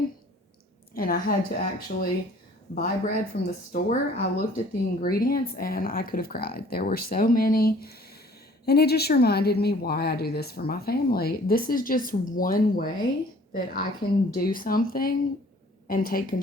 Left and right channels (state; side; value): normal; both; correlation 0.53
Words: and I had to actually buy bread from the store, I looked at the ingredients and I could have cried. There were so many, and it just reminded me why I do this for my family. This is just one way that I can do something and take